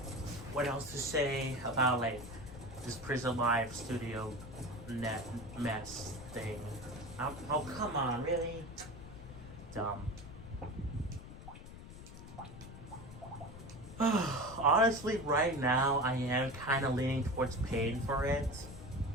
what else to say about like this Prism Live Studio net mess thing. Oh come on, really? Dumb. Honestly, right now I am kind of leaning towards paying for it.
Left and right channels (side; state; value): left; noise; rumble, 14 dB below the sound